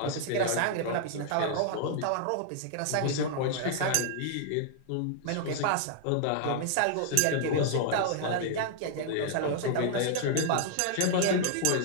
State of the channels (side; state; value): both; different; correlation -0.01